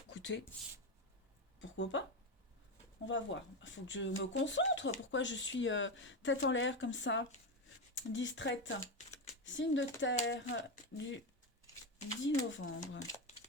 Écoutez, pourquoi pas? On va voir. Il faut que je me concentre. Pourquoi je suis tête en l'air comme ça, distraite? Signe de terre du 10 novembre.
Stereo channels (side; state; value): both; normal; correlation 0.12